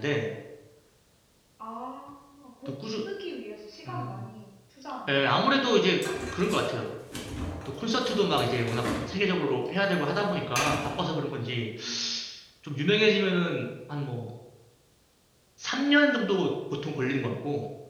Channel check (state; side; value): identical; both; correlation 1.00